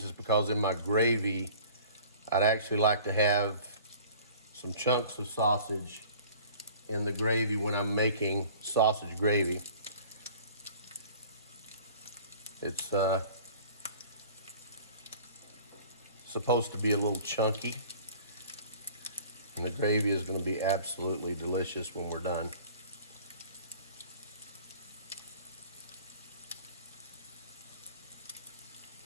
because in my gravy, I'd actually like to have some chunks of sausage in the gravy when I'm making sausage gravy. It's supposed to be a little chunky, and the gravy is going to be absolutely delicious when we're done.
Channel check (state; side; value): inverted; both; correlation -0.47